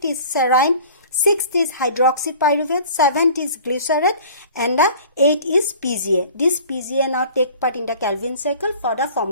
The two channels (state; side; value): inverted; both; correlation -0.46